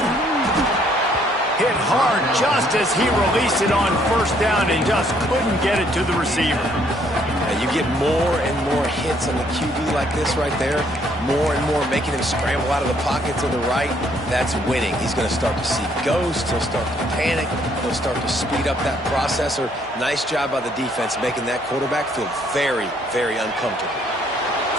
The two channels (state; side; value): normal; both; correlation 0.66